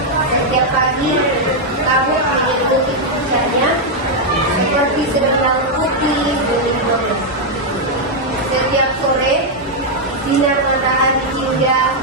Setiap pagi kabut menyelimuti puncaknya seperti selendang putih berlindung. Setiap sore sinar matahari hingga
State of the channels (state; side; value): normal; both; correlation -0.01